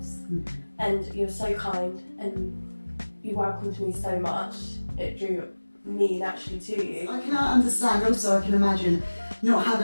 And you were so kind and you welcomed me so much, it drew me naturally to you. I can understand, also I can imagine not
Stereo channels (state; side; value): inverted; both; correlation -1.00